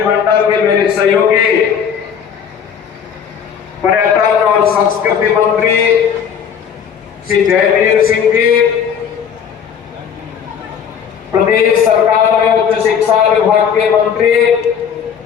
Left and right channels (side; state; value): right; quieter; 7.6 dB